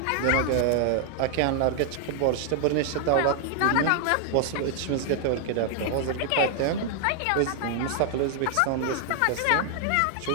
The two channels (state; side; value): different; both; correlation 0.00